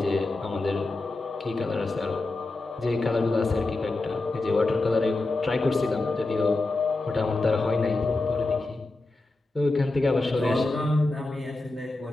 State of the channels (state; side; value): quieter; right; 3.1 dB